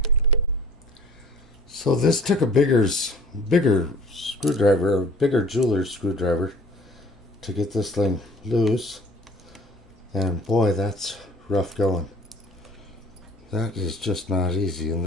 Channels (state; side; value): normal; both; correlation 0.50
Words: So this took a bigger screwdriver, a bigger jeweler's screwdriver to get this thing loose. And boy, that's rough going. That is just not easy. And